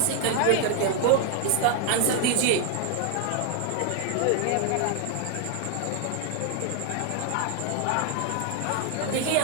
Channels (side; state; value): both; different; correlation 0.00